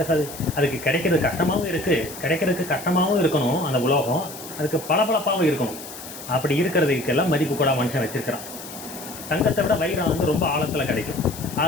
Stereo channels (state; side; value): noise; left; hiss, 13 dB below the sound